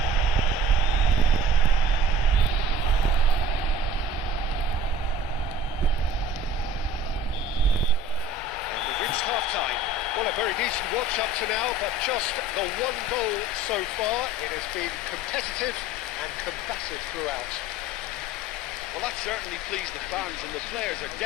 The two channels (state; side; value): normal; both; correlation 0.46